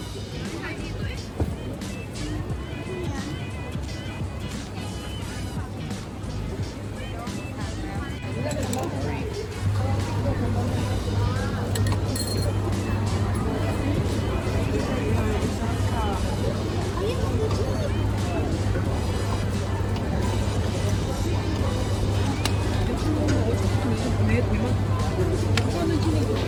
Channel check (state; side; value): identical; both; correlation 1.00